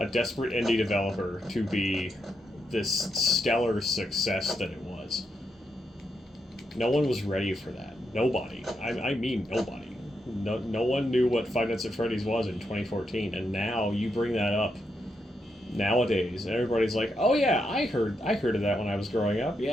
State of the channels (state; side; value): normal; both; correlation 0.82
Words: desperate indie developer to be this stellar success that it was. No one was ready for that. Nobody. I mean nobody. No one knew what Five Nights at Freddy's was in 2014, and now you bring that up nowadays, and everybody's like, oh yeah, I heard of that when I was growing up.